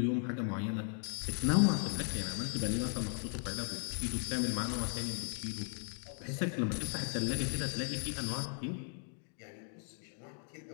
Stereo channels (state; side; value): silent; right; 53 dB below the other